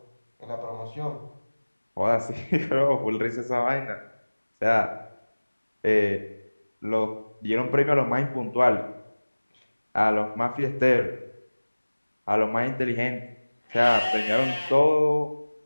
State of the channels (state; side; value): inverted; both; correlation -1.00